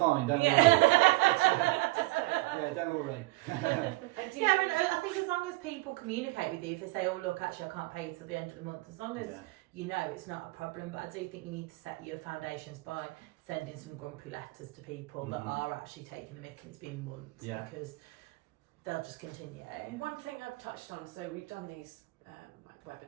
don't worry. Yeah, don't worry. Yeah, and I think as long as people communicate with you, if they say, oh look, actually I can't pay you till the end of the month, as long as you know it's not a problem. But I do think you need to set your foundations by sending some grumpy letters to people that are actually taking the mick and it's been months, because they'll just continue. One thing I've touched on, so we've done these like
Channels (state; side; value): quieter; left; 22.2 dB